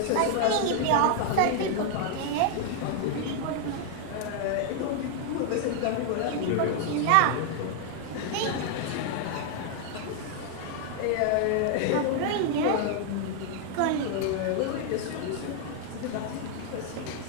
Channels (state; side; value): different; both; correlation 0.00